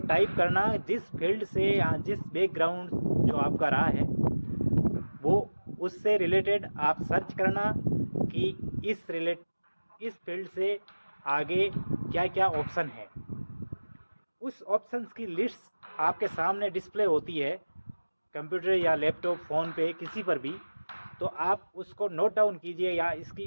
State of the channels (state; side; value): inverted; both; correlation -1.00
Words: टाइप करना जिस फील्ड से या जिस बैकग्राउंड जो आपका रहा है वो उससे रिलेटेड आप सर्च करना कि इस फील्ड से आगे क्या क्या ऑप्शन है। उस ऑप्शंस की लिस्ट आपके सामने डिस्प्ले होती है कंप्यूटर या लैपटॉप, फ़ोन पे, किसी पर भी। तो आप उसको नोट डाउन कीजिए या